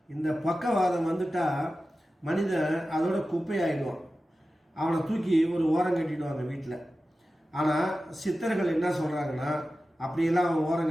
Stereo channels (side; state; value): both; normal; correlation 0.94